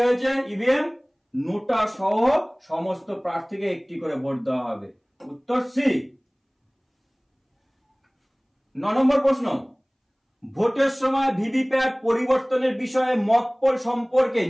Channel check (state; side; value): identical; both; correlation 1.00